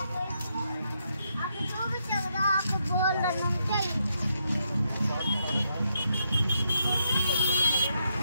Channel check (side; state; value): both; inverted; correlation -0.79